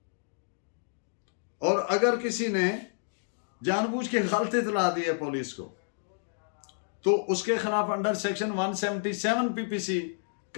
और अगर किसी ने जानबूझ के गलत इतला दी है पुलिस को, तो उसके खिलाफ अंडर सेक्शन 177 PPC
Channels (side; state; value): right; silent; digital silence